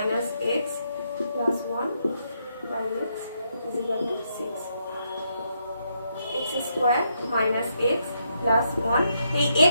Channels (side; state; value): both; inverted; correlation -0.78